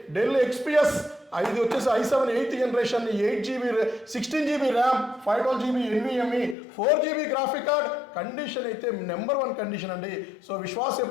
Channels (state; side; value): drops out; right; at 6.6 s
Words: డెల్ XPS ఇది వచ్చేసి i7 8th generation, 8GB 16GB RAM, 512GB NVMe, 4GB graphic card. Condition అయితే నెంబర్ 1 కండిషన్ అండి. సో విశ్వాస్